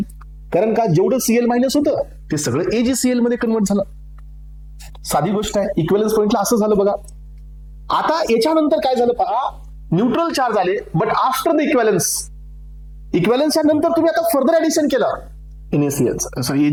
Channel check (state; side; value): identical; both; correlation 1.00